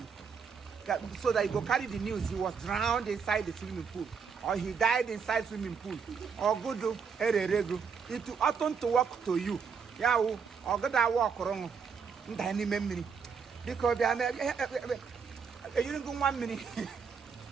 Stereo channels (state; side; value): quieter; left; 6.1 dB